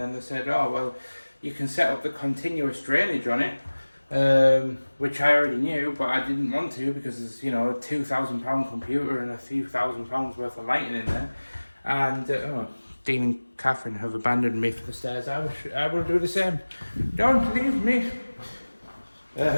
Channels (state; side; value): inverted; both; correlation -1.00